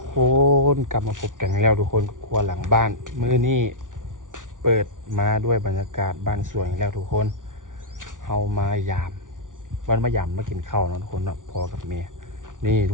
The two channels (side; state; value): left; late; 0.88 ms